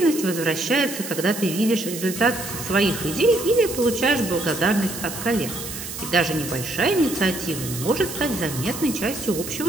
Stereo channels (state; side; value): noise; right; hiss, 9 dB below the sound